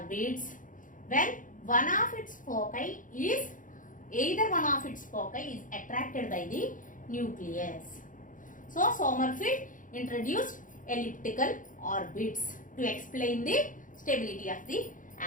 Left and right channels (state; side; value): late; right; 0.38 ms